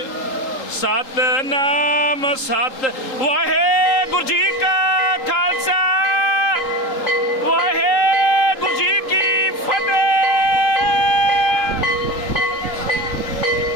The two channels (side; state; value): right; late; 3.8 ms